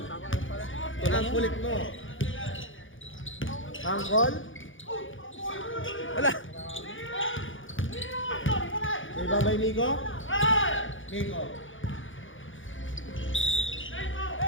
Ang kulit mo. Angkol. wala. Rebound by Nico. Nico.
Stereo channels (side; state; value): right; late; 0.57 ms